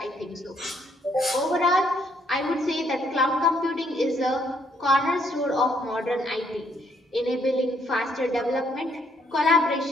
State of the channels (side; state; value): both; normal; correlation 0.69